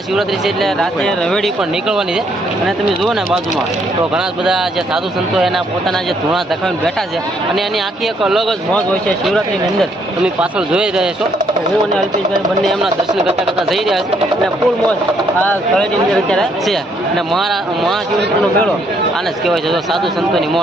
છે એટલે રાતે રવેડી પણ નીકળવાની છે. અને તમે જુઓ ને બાજુમાં તો ઘણા બધા જે સાધુ સંતો એના પોતાના જે ધૂણા ધખાવીને બેઠા છે અને એની આખી એક અલગ જ મોજ હોય છે શિવરાત્રીની અંદર. તમે પાછળ જોઈ રહ્યા છો હું અને અલ્પેશભાઈ બંને એમના દર્શન કરતા જઈ રહ્યા છે અને ફૂલ મોજ આ તળેટીની અંદર અત્યારે છે. અને મહાશિવરાત્રીનો મેળો આને જ કહેવાય છે. તો સાધુ સંતોની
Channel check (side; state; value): both; normal; correlation 0.70